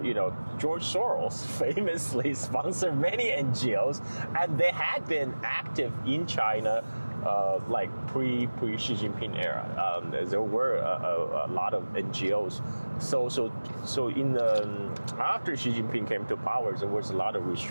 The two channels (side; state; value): both; inverted; correlation -1.00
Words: Soros famously sponsored many NGOs, and they had been active in China like pre Xi Jinping era. There were a lot of NGOs. So in after Xi Jinping came to power, there was a lot of